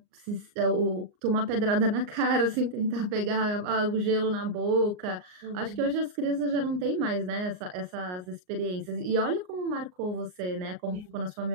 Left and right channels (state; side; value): late; left; 38 ms